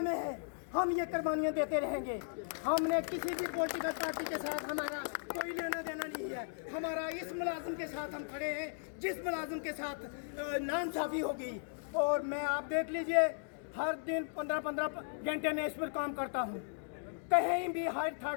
में है हम ये कुर्बानियाँ देते रहेंगे। हमने किसी भी पॉलिटिकल पार्टी के साथ हमारा कोई लेना देना नहीं है। हमारा इस मुलाजिम के साथ हम खड़े हैं जिस मुलाजिम के साथ नाइंसाफ़ी होगी। और मैं, आप देख लीजिए, हर दिन 15-15 घंटे में इस पर काम करता हूँ। कहीं भी हाई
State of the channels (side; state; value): right; silent; digital silence